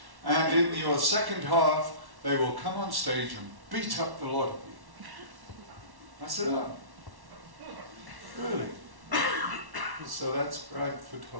and in your second half they will come on stage and beat up the lot of you. I said, oh, really? So that's Bradford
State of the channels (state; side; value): late; left; 1.1 ms